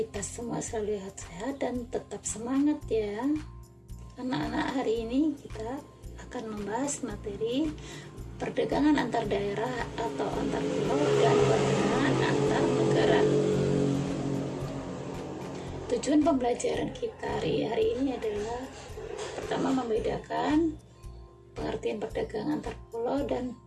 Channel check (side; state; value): both; identical; correlation 1.00